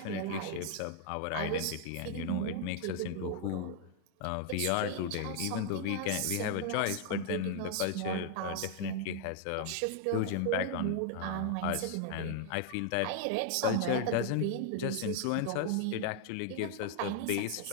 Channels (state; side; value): different; both; correlation 0.00